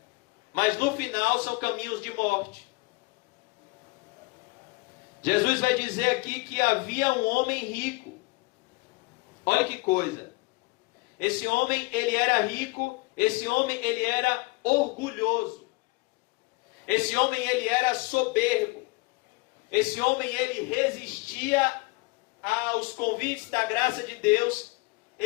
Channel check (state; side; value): quieter; right; 25.2 dB